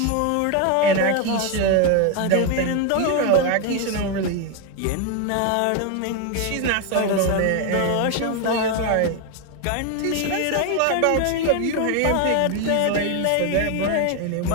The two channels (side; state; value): both; different; correlation 0.01